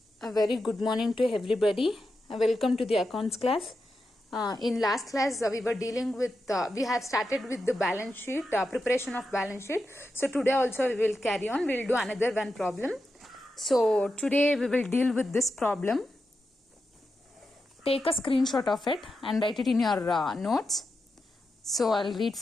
A very good morning to everybody. Welcome to the accounts class. In last class, we were dealing with, we have started with the balance sheet, preparation of balance sheet. So today also we will carry on. We will do another one problem. So today we will deal with this problem. Take a screenshot of it and write it in your notes. So I'll read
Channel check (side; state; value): both; normal; correlation 0.88